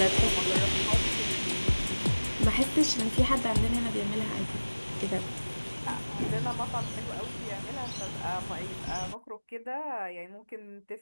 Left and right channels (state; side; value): inverted; both; correlation -1.00